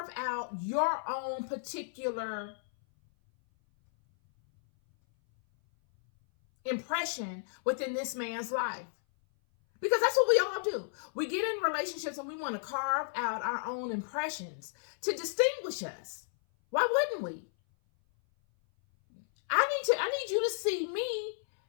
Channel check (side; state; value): right; silent; 56 dB below the other